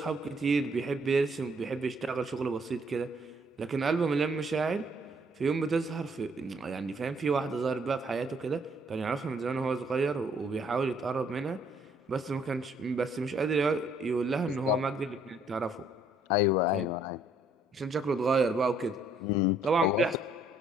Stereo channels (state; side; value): normal; both; correlation 0.65